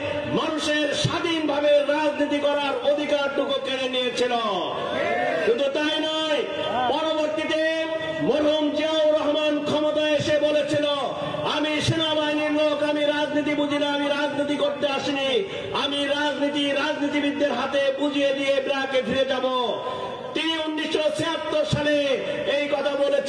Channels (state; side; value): identical; both; correlation 1.00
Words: মানুষের স্বাধীনভাবে রাজনীতি করার অধিকারটুকু কেড়ে নিয়েছিল। শুধু তাই নয়, পরবর্তীতে মরহুম জিয়াউর রহমান ক্ষমতায় এসে বলেছিল, আমি সেনাবাহিনীর লোক, আমি রাজনীতি বুঝি না, আমি রাজনীতি করতে আসিনি, আমি রাজনীতিবিদদের হাতে বুঝিয়ে দিয়ে ব্রাকে ফিরে যাব। তিনি 1976 সালে এই কথা